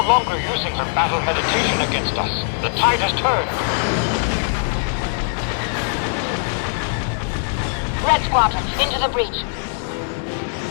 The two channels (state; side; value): silent; right; digital silence